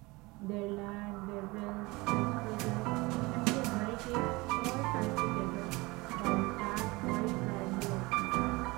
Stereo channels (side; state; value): left; quieter; 23.4 dB